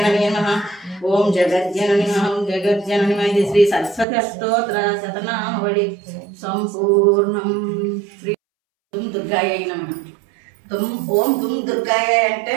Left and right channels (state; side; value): drops out; left; at 4.0 s